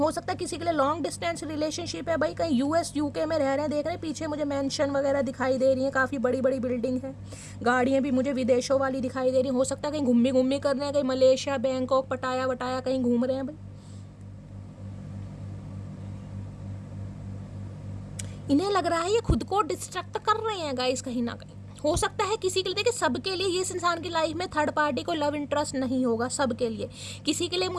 सकता है किसी के लिए लॉन्ग डिस्टेंस रिलेशनशिप है भाई, कहीं यूएस यूके में रह रहे हैं, देख रहे हैं पीछे मुझे मेंशन वगैरह दिखाई दे रही है, काफ़ी बड़ी बड़ी बिल्डिंग है, गाड़ियाँ भी मुझे विदेशों वाली दिखाई दे रही हैं। हो सकता है कहीं घूमी घूमी कर रहे हैं, कहीं मलेशिया, बैंकॉक, पटाया वटाया कहीं घूम रहे हैं भाई। इन्हें लग रहा है ये खुद को डिस्ट्रैक्ट कर रहे हैं गाइस कहीं ना कहीं। हो सकता है किसी के लिए, देखिए सबके लिए ये इस इंसान की लाइफ में थर्ड पार्टी को लव इंटरेस्ट नहीं होगा, सबके लिए। किसी के लिए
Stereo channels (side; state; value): both; identical; correlation 1.00